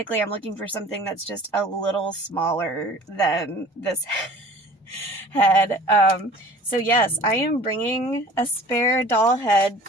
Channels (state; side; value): normal; both; correlation 0.46